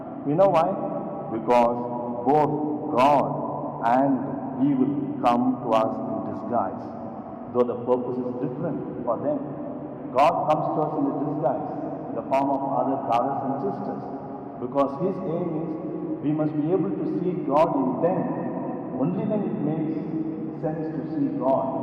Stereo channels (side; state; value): both; identical; correlation 1.00